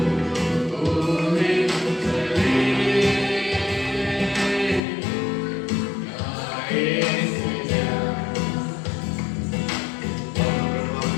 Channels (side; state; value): right; drops out; at 4.8 s